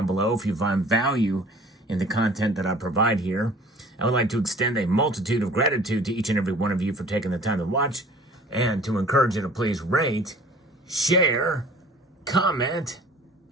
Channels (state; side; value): normal; both; correlation 0.48